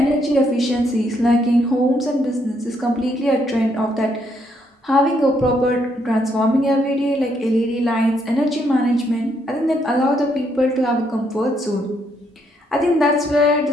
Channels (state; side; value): normal; both; correlation 0.73